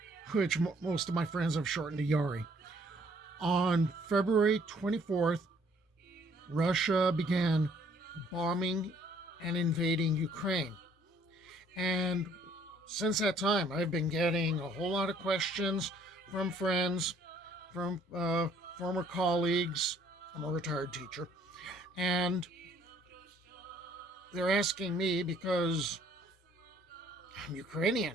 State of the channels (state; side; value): normal; both; correlation 0.62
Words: which most of my friends have shortened to Yari. On February 24th, Russia began bombing and invading Ukraine. And since that time, I've been getting a whole lot of questions from friends, from former colleagues. I'm a retired teacher. And they're asking me because I'm